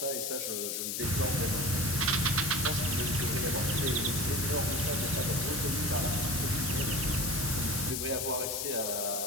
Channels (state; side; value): noise; left; hiss, 1 dB below the sound